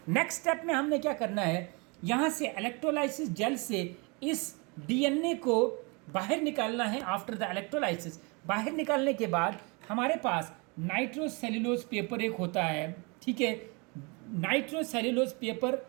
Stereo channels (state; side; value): quieter; left; 30.1 dB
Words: नेक्स्ट स्टेप में हमने क्या करना है, यहाँ से इलेक्ट्रोलाइसिस जेल से इस डीएनए को बाहर निकालना है। आफ्टर द इलेक्ट्रोलाइसिस बाहर निकालने के बाद हमारे पास नाइट्रोसेल्यूलोज पेपर एक होता है, ठीक है। नाइट्रोसेल्यूलोज पेपर